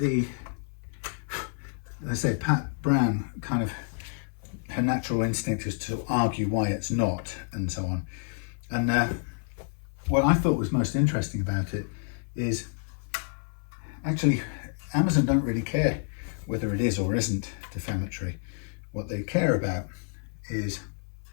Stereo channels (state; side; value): silent; right; 59 dB below the other